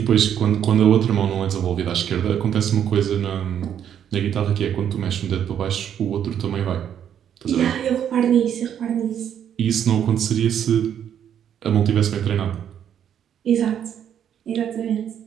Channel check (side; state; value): left; quieter; 9.3 dB